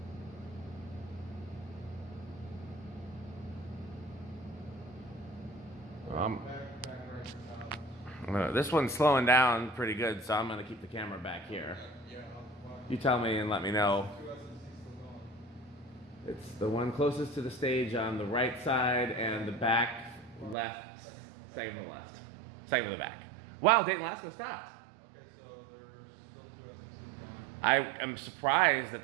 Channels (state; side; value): drops out; left; at 20.6 s